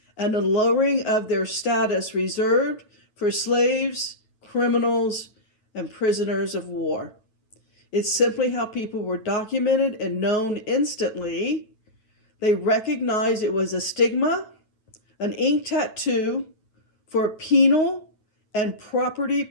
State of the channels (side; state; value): right; late; 9.1 ms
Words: and a lowering of their status reserved for slaves, criminals, and prisoners of war. It's simply how people were documented and known instantly. They recognized it was a stigma, an ink tattoo for penal and property